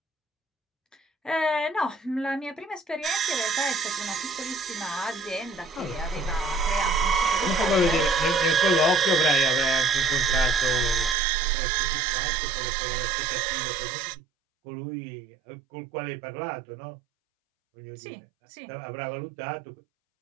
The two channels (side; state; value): left; drops out; at 11.2 s